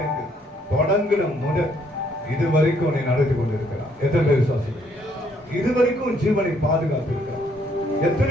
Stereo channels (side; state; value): both; normal; correlation 0.68